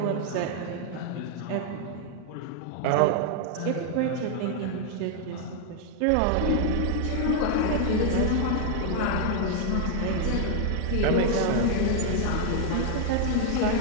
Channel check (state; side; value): different; both; correlation -0.01